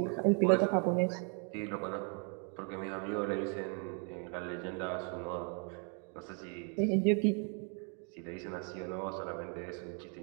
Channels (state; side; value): quieter; left; 39.1 dB